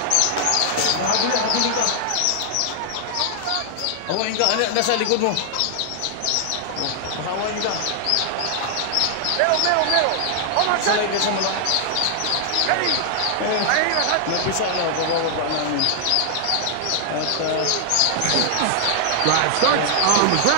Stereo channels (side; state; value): both; different; correlation 0.00